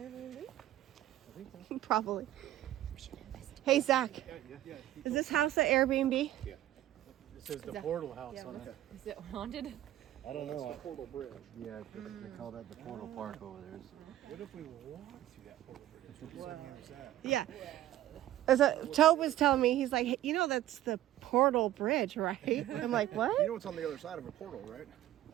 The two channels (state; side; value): quieter; left; 13.7 dB